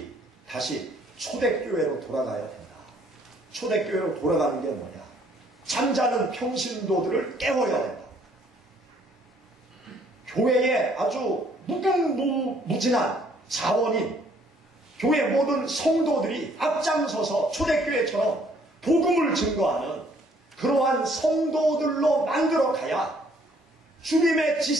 다시 초대교회로 돌아가야 된다. 초대교회로 돌아가는 게 뭐냐? 잠자는 평신도들을 깨워야 된다. 교회에 아주 무궁무진한 자원인 교회 모든 성도들이 앞장서서 초대교회처럼 복음을 증거하는 그러한 성도들로 만들어 가야 주님의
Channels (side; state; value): both; normal; correlation 0.63